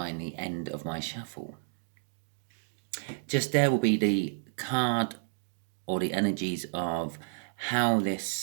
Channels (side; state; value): left; silent; digital silence